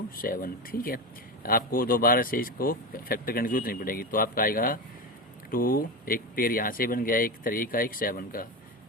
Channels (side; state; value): both; normal; correlation 0.19